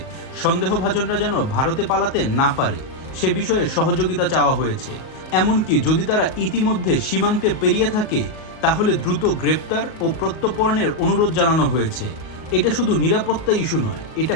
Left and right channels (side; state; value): right; late; 38 ms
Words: সন্দেহভাজনরা যেন ভারতে পালাতে না পারে, সে বিষয়ে সহযোগিতা চাওয়া হয়েছে। এমনকি যদি তারা ইতিমধ্যে সীমান্তে পেরিয়ে থাকে, তাহলে দ্রুত গ্রেপ্তার ও প্রত্যর্পণের অনুরোধ জানানো হয়েছে। এটা শুধু নিরাপত্তা ইস্যু নয়, এটা